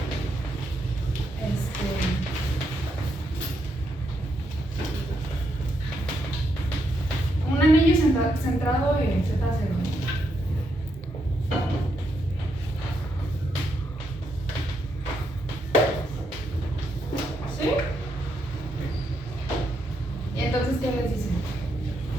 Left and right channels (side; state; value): both; normal; correlation 0.79